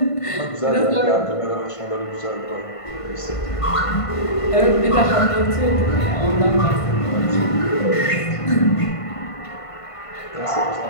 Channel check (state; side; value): late; right; 1.5 ms